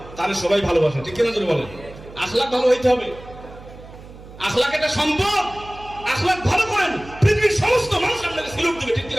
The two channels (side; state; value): right; noise; hum, 18 dB below the sound